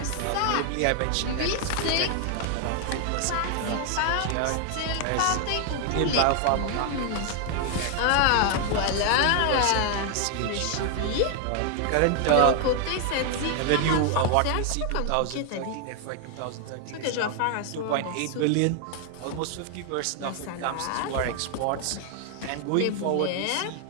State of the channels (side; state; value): both; different; correlation 0.00